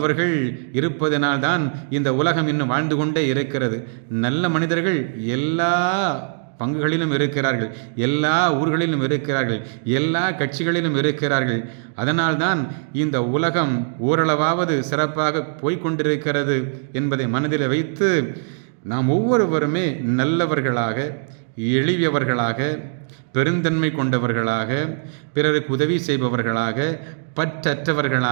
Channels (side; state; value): left; silent; digital silence